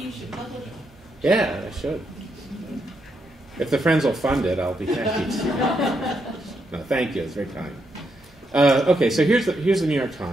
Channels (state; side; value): normal; both; correlation 0.80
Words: should publish it. yeah, I should. If the Friends will fund it, I'll be happy to. No, thank you. It's very kind. Okay, so here's the New York